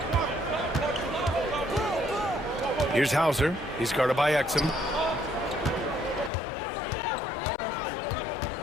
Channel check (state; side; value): drops out; right; at 6.3 s